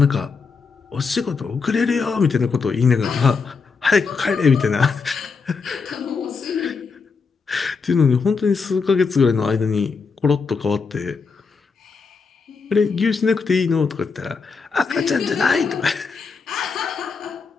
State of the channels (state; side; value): quieter; right; 5.0 dB